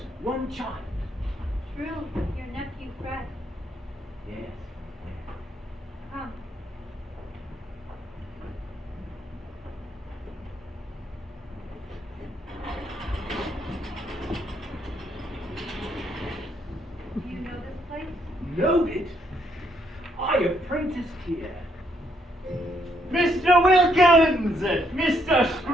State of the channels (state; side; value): normal; both; correlation 0.72